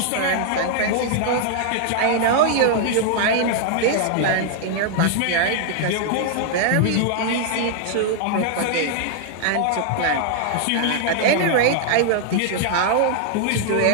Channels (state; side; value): different; both; correlation 0.00